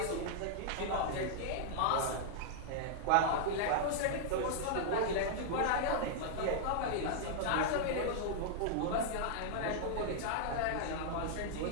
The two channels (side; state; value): both; different; correlation -0.01